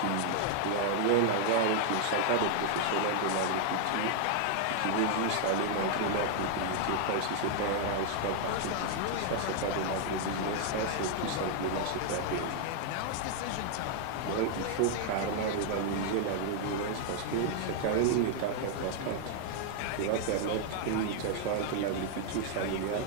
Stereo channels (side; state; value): both; different; correlation 0.00